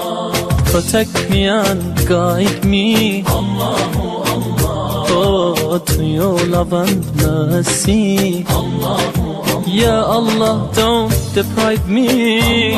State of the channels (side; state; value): both; identical; correlation 1.00